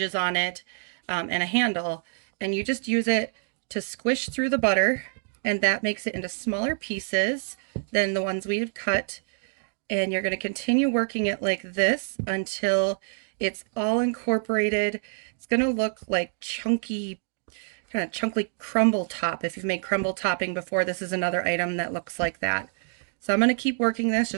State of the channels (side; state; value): left; silent; digital silence